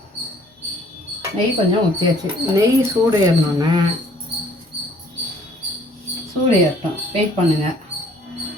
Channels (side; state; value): both; normal; correlation 0.58